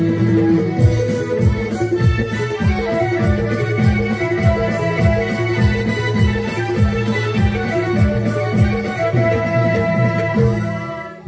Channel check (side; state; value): both; identical; correlation 1.00